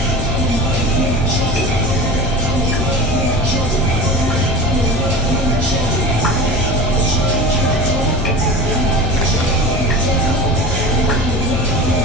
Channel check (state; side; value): normal; both; correlation 0.32